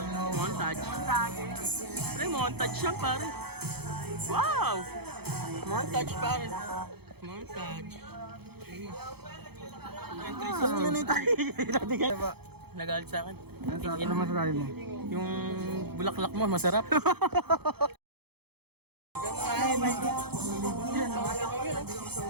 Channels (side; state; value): left; late; 0.97 ms